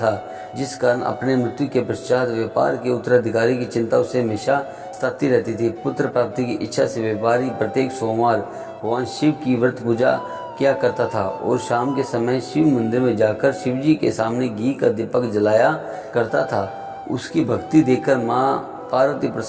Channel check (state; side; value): identical; both; correlation 1.00